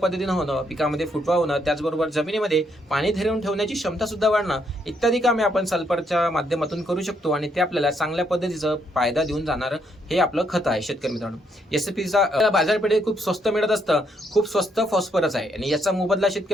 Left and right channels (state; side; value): normal; both; correlation 0.74